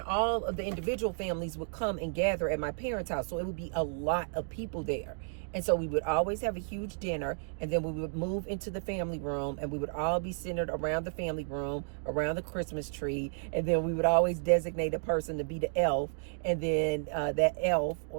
of the individual families would come and gather at my parents' house. So it would be a lot of people there. And so we would always have a huge dinner, and then we would move into the family room, and we would all be centered around the family room, around the Christmas tree. And then we would always designate a person to be the elf. And then that elf,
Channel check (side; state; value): left; silent; digital silence